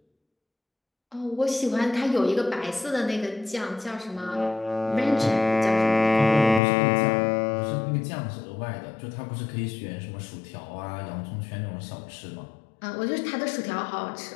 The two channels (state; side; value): drops out; right; at 6.6 s